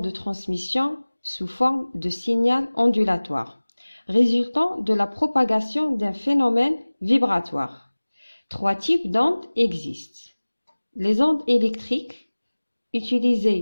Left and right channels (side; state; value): both; inverted; correlation -1.00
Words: transmission sous forme de signal ondulatoire, résultant de la propagation d'un phénomène vibratoire. Trois types d'ondes existent. Les ondes électriques,